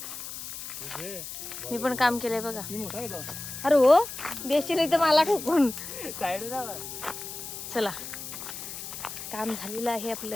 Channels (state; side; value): noise; left; hiss, 9 dB below the sound